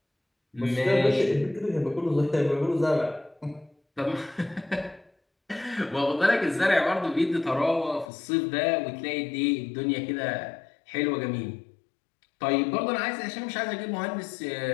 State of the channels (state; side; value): drops out; right; at 8.1 s